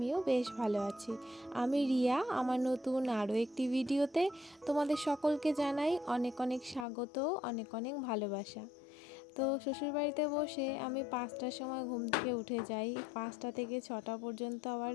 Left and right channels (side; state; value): right; drops out; at 6.9 s